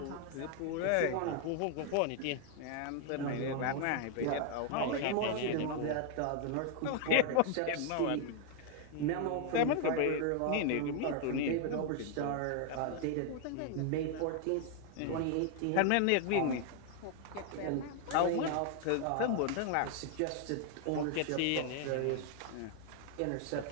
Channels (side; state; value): both; different; correlation 0.00